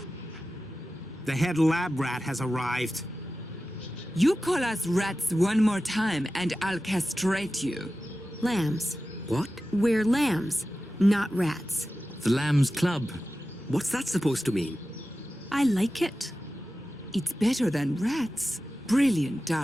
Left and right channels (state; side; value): normal; both; correlation 0.94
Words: The head lab rat has arrived. You call us rats one more time and I'll castrate you. Lambs. What? We're lambs, not rats. The Lambs Club. What's that supposed to mean? I like it. It's better than rats. Brilliant,